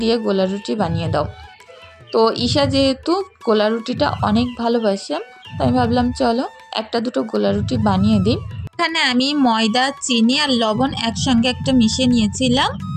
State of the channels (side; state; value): both; identical; correlation 1.00